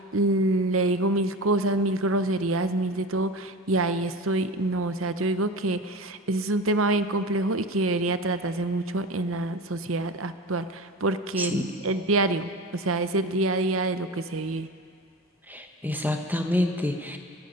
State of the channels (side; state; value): both; normal; correlation 0.31